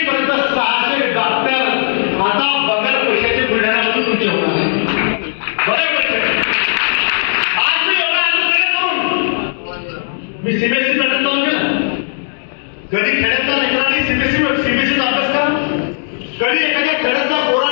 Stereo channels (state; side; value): silent; right; 69 dB below the other